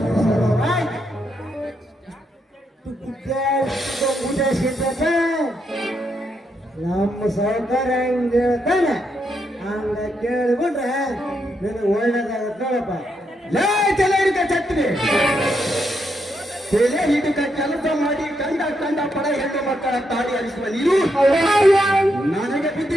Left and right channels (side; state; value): both; normal; correlation 0.80